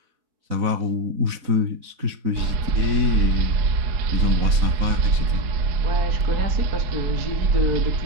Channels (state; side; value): late; left; 4.0 ms